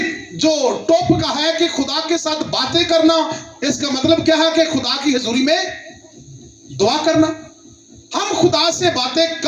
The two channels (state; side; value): identical; both; correlation 1.00